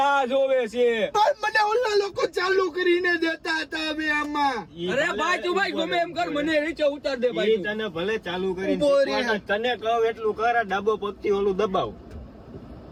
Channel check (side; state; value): both; identical; correlation 1.00